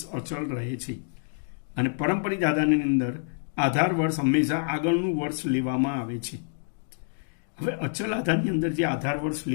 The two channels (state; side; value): silent; right; digital silence